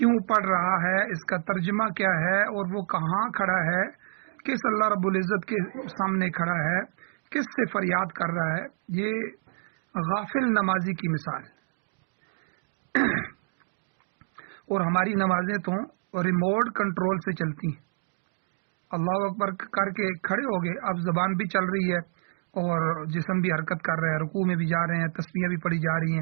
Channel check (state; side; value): silent; left; digital silence